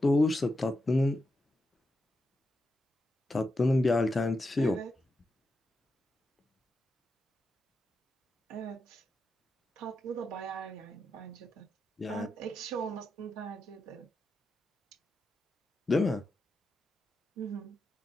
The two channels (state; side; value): normal; both; correlation 0.87